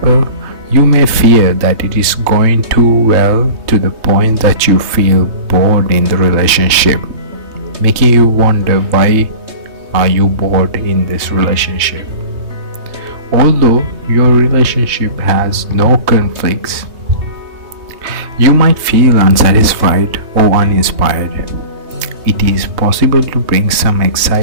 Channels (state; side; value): late; left; 3.2 ms